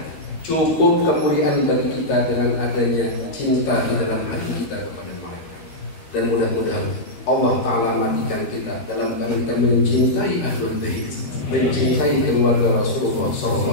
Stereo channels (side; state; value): right; late; 13 ms